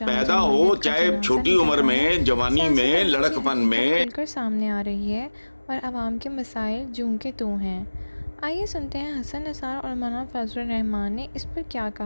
ہو چاہے چھوٹی عمر میں، جوانی میں، لڑکپن میں، کھل کر سامنے آ رہی ہے اور عوام کے مسائل جوں کے توں ہیں۔ آئیے سنتے ہیں حسن نثار اور مولانا فضل الرحمان نے اس پر کیا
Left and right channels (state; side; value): inverted; both; correlation -1.00